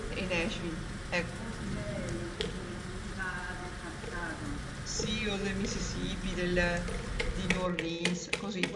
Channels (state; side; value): identical; both; correlation 1.00